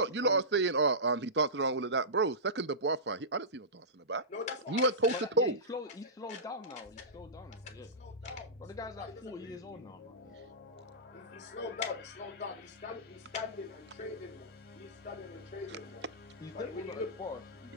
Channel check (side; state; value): both; normal; correlation -0.19